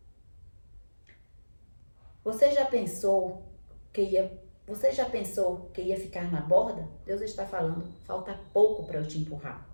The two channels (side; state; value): both; inverted; correlation -1.00